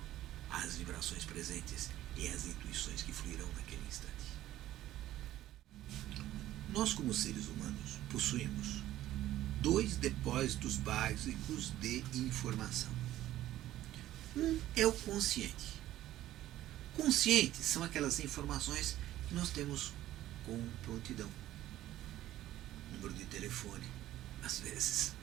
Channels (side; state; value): left; quieter; 14.0 dB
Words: às vibrações presentes e às intuições que fluirão naquele instante. Nós, como seres humanos, possuímos 2 depósitos básicos de informação. Um é o consciente. Conscientes são aquelas informações que nós temos com prontidão. Número de telefone, às vezes,